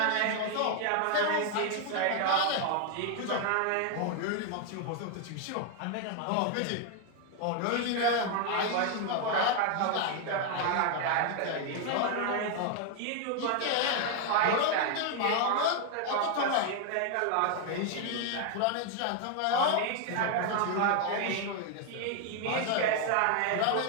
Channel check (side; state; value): both; different; correlation 0.00